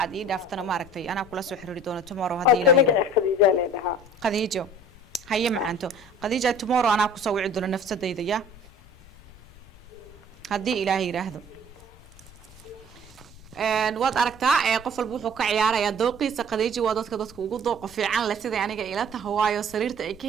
aad ii dhaaftana maaragtay ana kula soo xiriiri doono tomorrow hadii ilaahay qadiijo haye macanto qadiijo tomorrow ana ku soo wici doono nafsadayda ya hadii ilaahay yiraahdo waad aragtaa qof walba wuxuu ka ciyaarayaa dooqiisa qadiijo waa dadka ugu dooq fiican la sida aniga ila tahay waayo sariirta ay ka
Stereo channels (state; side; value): noise; left; rumble, 23 dB below the sound